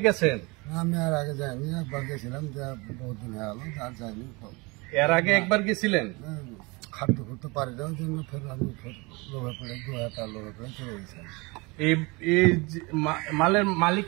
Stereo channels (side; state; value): left; quieter; 26.5 dB